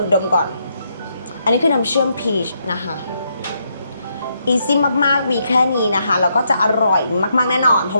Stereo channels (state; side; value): inverted; both; correlation -0.78